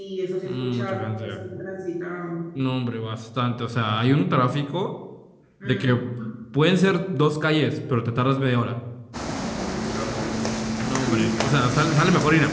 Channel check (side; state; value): both; identical; correlation 1.00